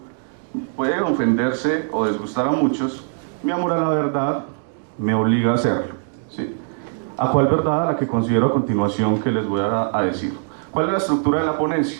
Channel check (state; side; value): silent; left; digital silence